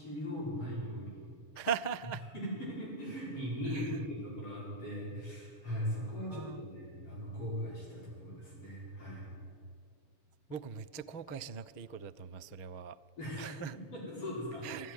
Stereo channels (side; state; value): right; late; 6.5 ms